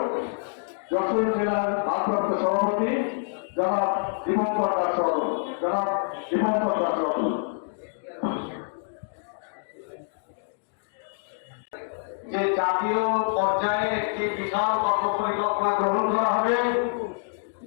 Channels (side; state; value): right; silent; digital silence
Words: যশোর জেলার ভারপ্রাপ্ত সভাপতি জনাব দীপঙ্কর দাস রতন। জনাব দীপঙ্কর দাস রতন। যে জাতীয় পর্যায়ে একটি বিশাল কর্মপরিকল্পনা গ্রহণ করা হবে,